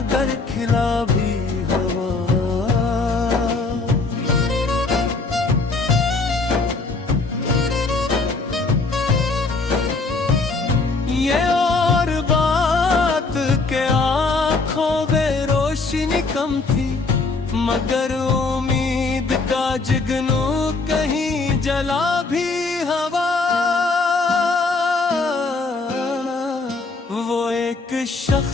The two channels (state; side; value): quieter; right; 3.8 dB